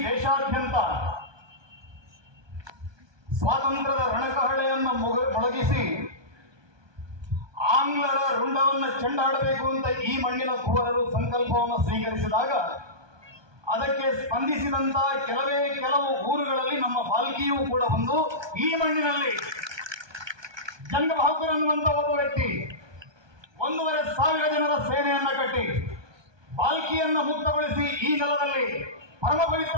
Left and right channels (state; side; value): late; left; 1.2 ms